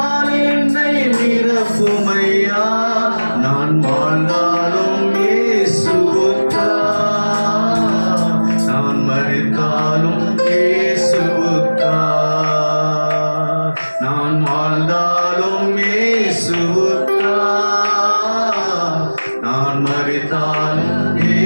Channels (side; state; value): both; inverted; correlation -1.00